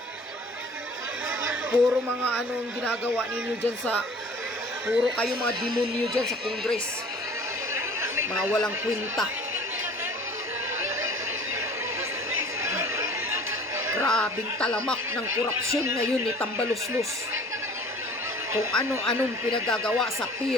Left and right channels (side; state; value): both; normal; correlation 0.48